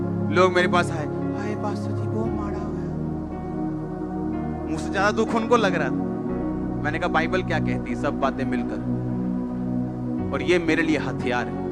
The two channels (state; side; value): identical; both; correlation 1.00